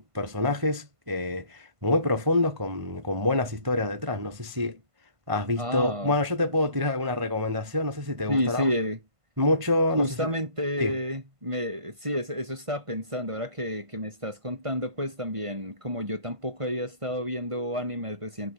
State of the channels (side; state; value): left; late; 1.5 ms